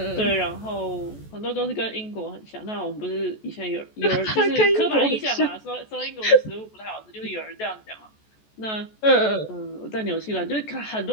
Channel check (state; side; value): late; right; 14 ms